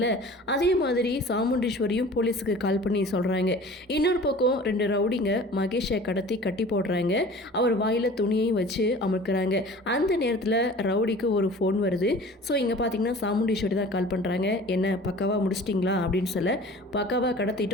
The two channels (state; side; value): normal; both; correlation 0.44